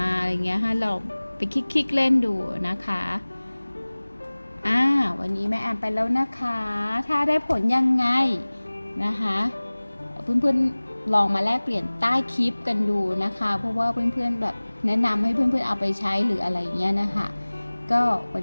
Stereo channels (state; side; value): inverted; both; correlation -1.00